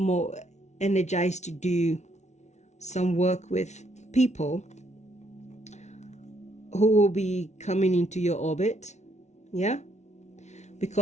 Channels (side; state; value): right; late; 0.33 ms